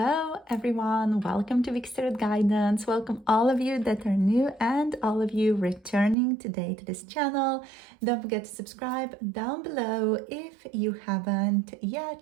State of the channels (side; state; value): left; drops out; at 6.2 s